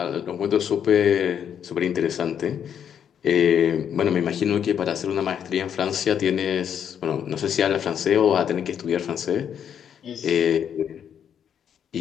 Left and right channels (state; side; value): quieter; right; 8.6 dB